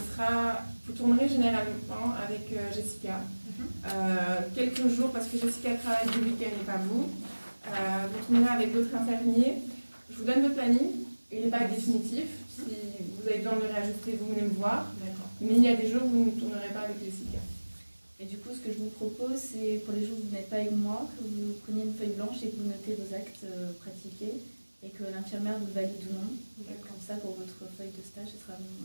vous tournerez généralement avec Jessica. Quelques jours, parce que Jessica travaille du week-end et pas vous. Vous tournerez avec d'autres infirmiers. Je vous donne votre planning. Il n'est pas définitif. Si vous avez besoin de le réajuster, vous venez me voir. Mais il y a des jours où vous ne tournerez pas avec Jessica. Et du coup, ce que je vous propose, c'est pour les jours où vous n'êtes pas avec moi, que vous preniez une feuille blanche et que vous notez vos actes pratiqués et que l'infirmière vous valide ou non. Comme ça, pour votre feuille de stage,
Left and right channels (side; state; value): both; inverted; correlation -1.00